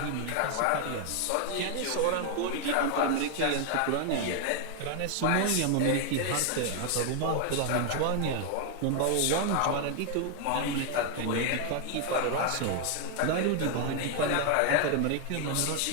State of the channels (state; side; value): different; both; correlation 0.01